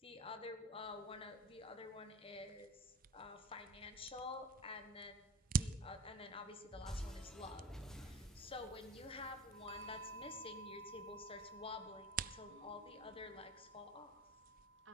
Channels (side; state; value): both; normal; correlation 0.37